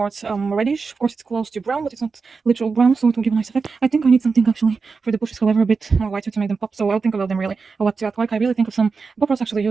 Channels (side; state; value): left; quieter; 4.8 dB